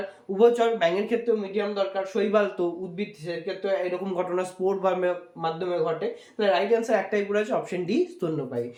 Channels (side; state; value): both; identical; correlation 1.00